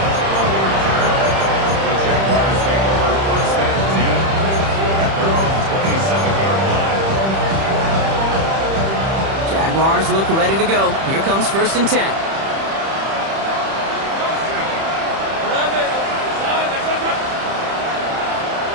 Jaguars look ready to go. Here comes 1st and 10.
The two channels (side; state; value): left; late; 31 ms